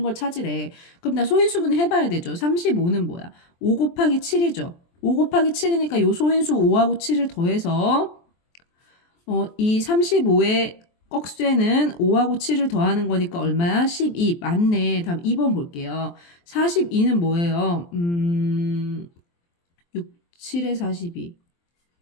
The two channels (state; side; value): late; right; 23 ms